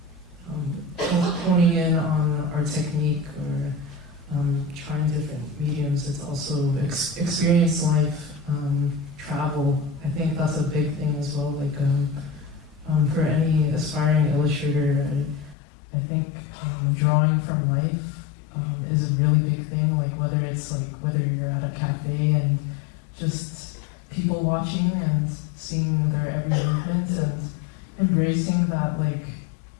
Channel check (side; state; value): right; drops out; at 15.6 s